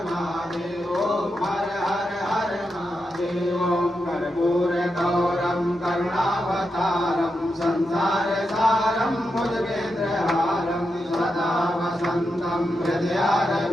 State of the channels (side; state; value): both; normal; correlation 0.86